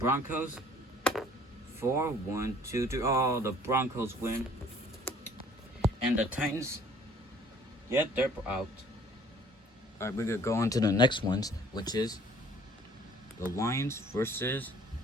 4, 1, 2, 3. Oh, the Broncos win. And the Titans, yep, they're out. Alright, we're gonna go on to the next ones, which is the Lions versus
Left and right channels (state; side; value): normal; both; correlation 0.55